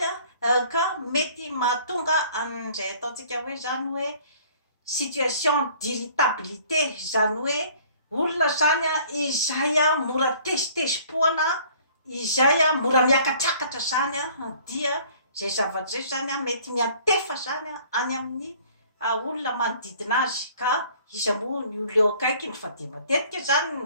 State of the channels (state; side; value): inverted; both; correlation -0.54